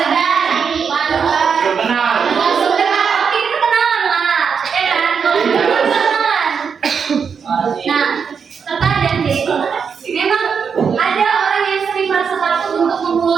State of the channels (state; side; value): quieter; left; 6.4 dB